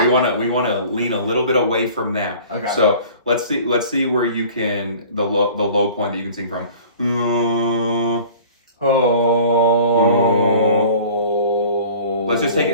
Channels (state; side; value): inverted; both; correlation -0.46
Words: want to lean a little bit away from that. Okay. So let's see where you can the low point that you can sing from. Let's just take